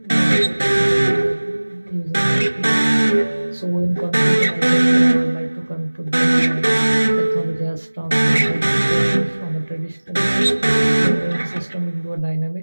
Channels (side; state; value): both; inverted; correlation -1.00